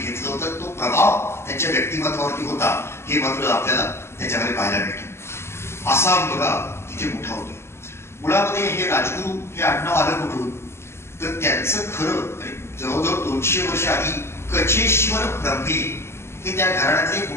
होतं, तो प्रभाव त्यांच्या व्यक्तिमत्वावरती होता हे मात्र आपल्याला त्याच्यामध्ये पाहायला मिळतं. असा मुलगा तिथे मोठा होतो. मुळामध्ये हे राजगुरू हे आडनाव आलं कुठून, तर त्यांचं खरं जवळजवळ 200 वर्ष आधी कचेश्वर ब्रह्मे हे त्या घराण्यातले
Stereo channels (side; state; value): right; late; 0.12 ms